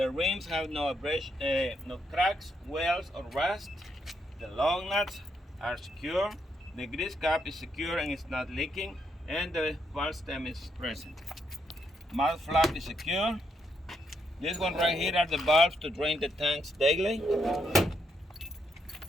rims have no cracks, wells, or rust. The lug nuts are secure. The grease cap is secure and it's not leaking. And the valve stem is present. Mouth flap is secure. This one right here are the valves to drain the tanks daily.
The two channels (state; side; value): normal; both; correlation 0.77